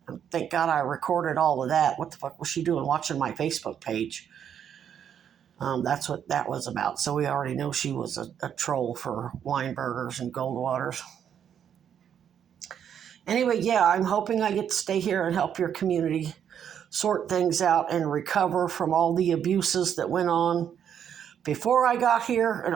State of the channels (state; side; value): quieter; left; 8.8 dB